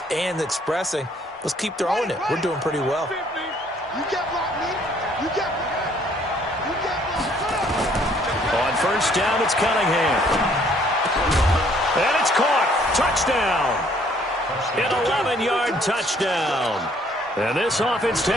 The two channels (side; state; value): both; normal; correlation 0.63